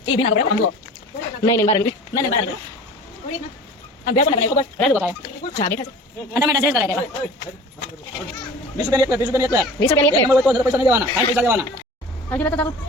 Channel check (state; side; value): normal; both; correlation 0.41